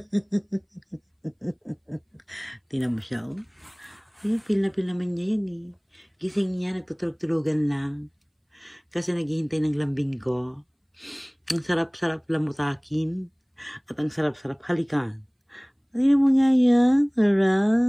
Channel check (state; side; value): identical; both; correlation 1.00